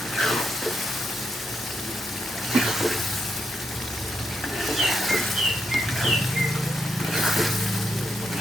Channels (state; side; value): normal; both; correlation 0.81